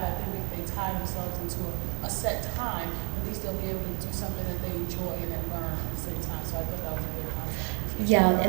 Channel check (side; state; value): left; quieter; 36.3 dB